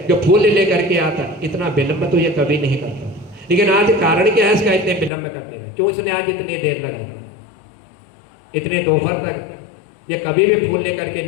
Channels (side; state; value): right; drops out; at 5.1 s